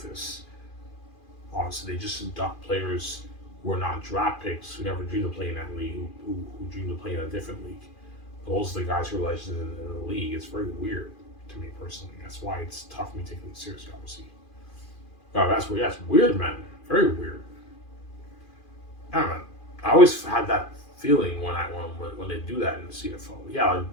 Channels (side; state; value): right; late; 2.4 ms